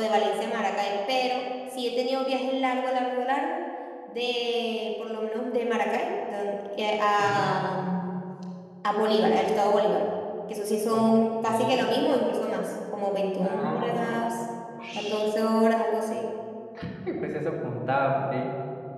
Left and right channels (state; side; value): identical; both; correlation 1.00